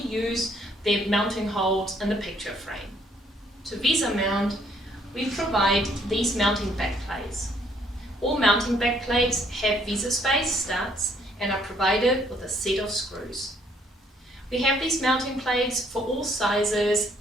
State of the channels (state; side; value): normal; both; correlation 0.66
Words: use the mounting holes in the picture frame. To VESA mount, we provide these mounting backplates. All mounting backplates have VESA space studs and are provided with a set of screws. We have these mounting plates for all sizes